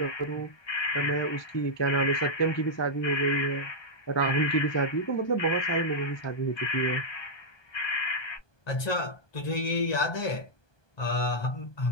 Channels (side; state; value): right; late; 1.2 ms